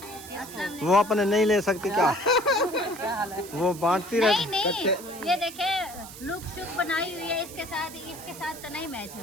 वो अपने नहीं ले सकती क्या? क्या हाल है? वो बांटती नहीं रहती। नहीं, ये देखे लुक शुक बनाई हुई है, इसके साथ तो नहीं मैच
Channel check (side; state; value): right; noise; hiss, 15 dB below the sound